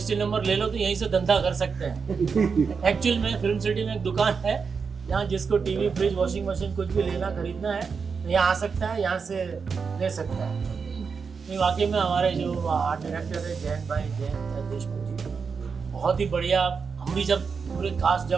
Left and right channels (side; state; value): left; quieter; 5.5 dB